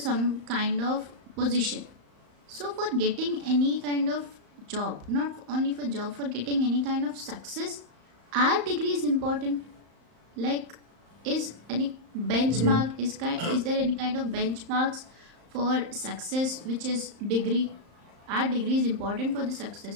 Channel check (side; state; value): left; late; 35 ms